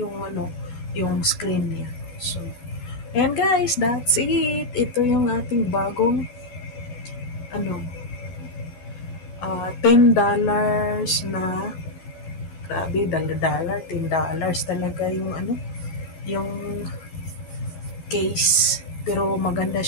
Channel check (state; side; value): late; right; 12 ms